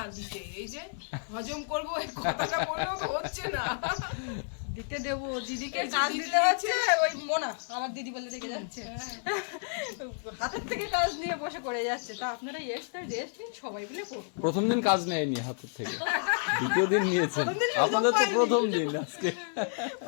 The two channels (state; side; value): silent; right; 57 dB below the other